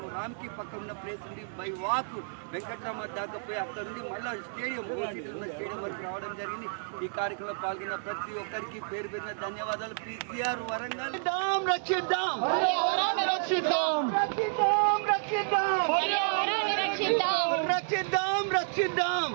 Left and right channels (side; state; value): left; silent; digital silence